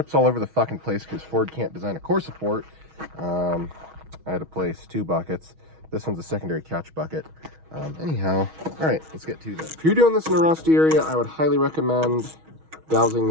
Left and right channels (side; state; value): left; late; 6.3 ms